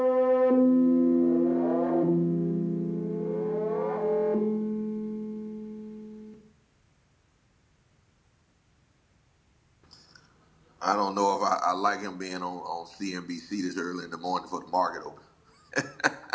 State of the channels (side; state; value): both; identical; correlation 1.00